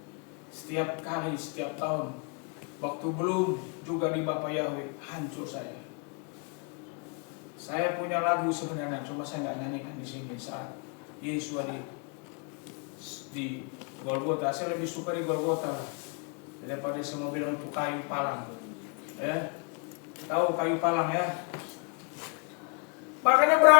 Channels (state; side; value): quieter; right; 36.4 dB